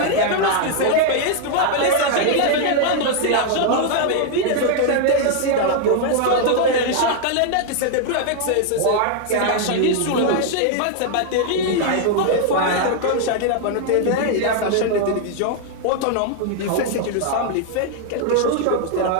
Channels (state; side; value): different; both; correlation 0.00